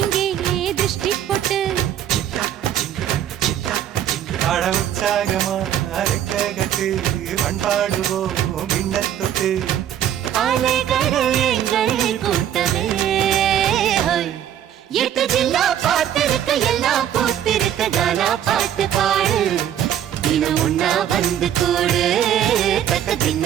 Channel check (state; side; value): quieter; left; 10.5 dB